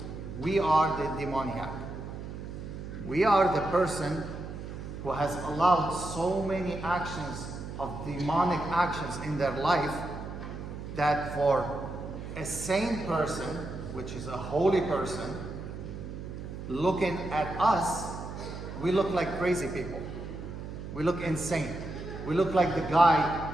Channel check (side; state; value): right; noise; hum, 9 dB below the sound